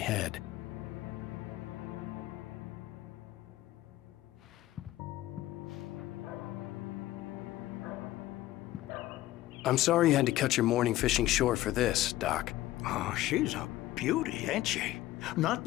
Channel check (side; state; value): right; quieter; 15.3 dB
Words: I'm sorry you had to cut your morning fishing short for this, Doc. Oh, she's a beauty, ain't she? Not